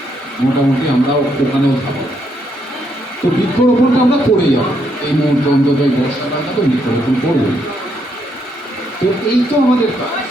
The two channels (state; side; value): normal; both; correlation 0.75